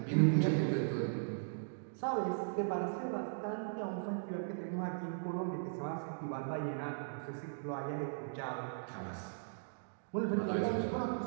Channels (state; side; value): silent; left; digital silence